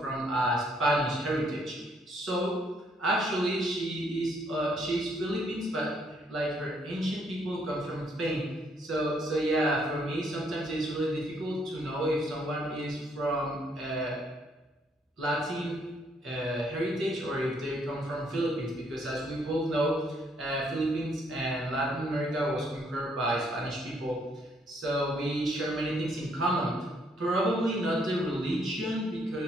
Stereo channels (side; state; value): both; normal; correlation 0.69